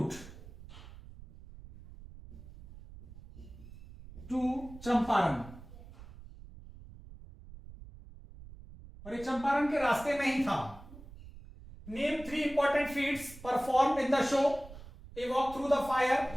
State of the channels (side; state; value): right; noise; rumble, 17 dB below the sound